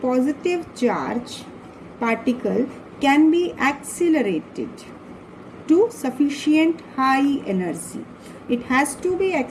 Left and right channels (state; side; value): identical; both; correlation 1.00